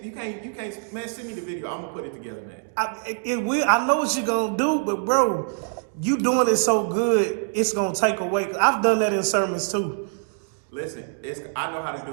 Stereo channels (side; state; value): left; silent; 61 dB below the other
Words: Man, send me the video. I'm gonna put it together, man. I know what you're gonna do, but bro, you doing it so good, it's gonna take away. 'Cause I've done that in sermons too. Listen, I know how to